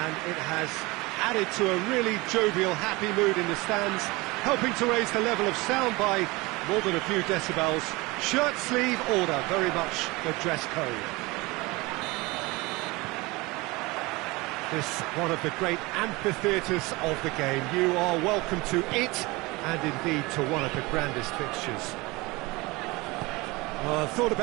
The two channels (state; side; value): quieter; left; 23.2 dB